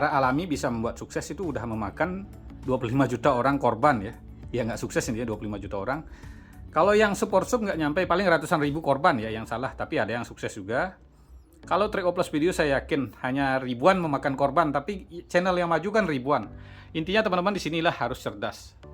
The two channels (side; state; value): both; identical; correlation 1.00